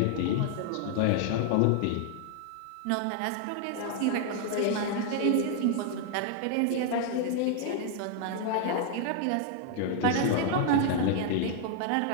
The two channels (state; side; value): different; both; correlation 0.00